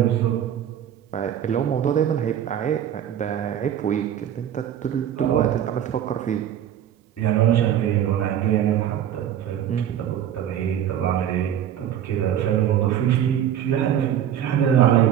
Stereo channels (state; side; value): quieter; left; 10.2 dB